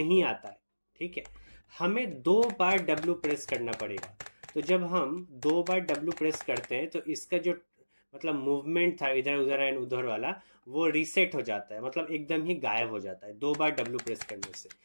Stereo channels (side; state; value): both; inverted; correlation -1.00